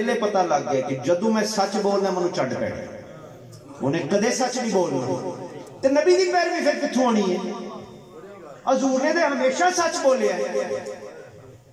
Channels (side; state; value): both; identical; correlation 1.00